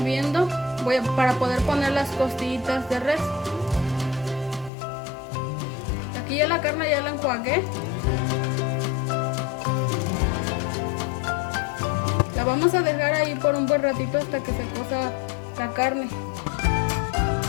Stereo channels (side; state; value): right; drops out; at 4.7 s